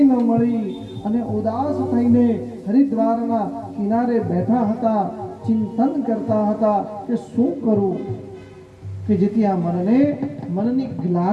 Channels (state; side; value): identical; both; correlation 1.00